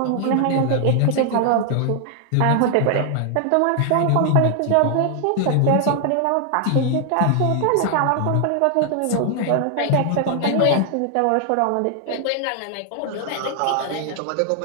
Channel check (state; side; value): different; both; correlation 0.00